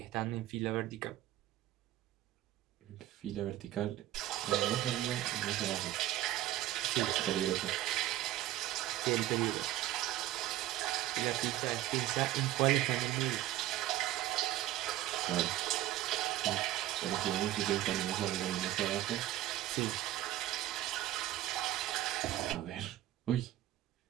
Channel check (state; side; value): quieter; left; 14.3 dB